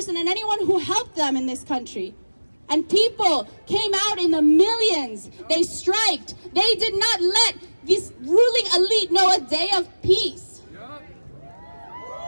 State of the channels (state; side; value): inverted; both; correlation -1.00